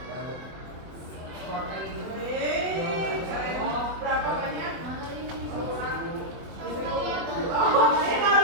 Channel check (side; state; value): left; late; 24 ms